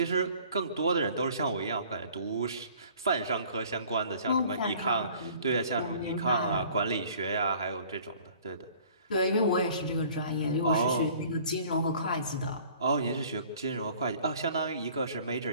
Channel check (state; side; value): inverted; both; correlation -0.52